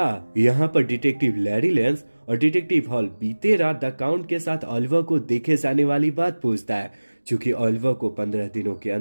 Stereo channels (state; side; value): inverted; both; correlation -1.00